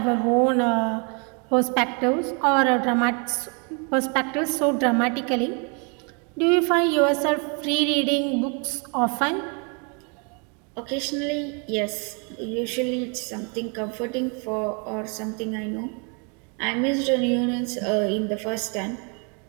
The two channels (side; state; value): left; quieter; 35.9 dB